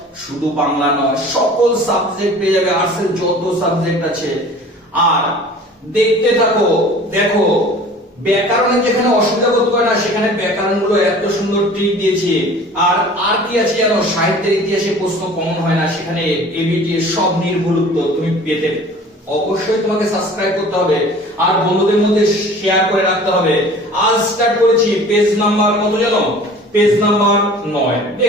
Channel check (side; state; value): both; normal; correlation 0.45